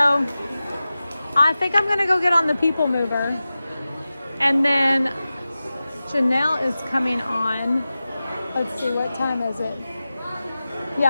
I think I'm gonna go get on the People Mover. And then Janelle is coming on. Let's see, what time is it?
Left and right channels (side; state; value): both; inverted; correlation -0.95